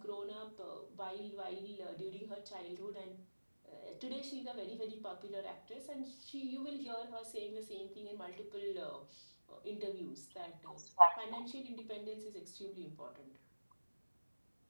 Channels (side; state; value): both; inverted; correlation -1.00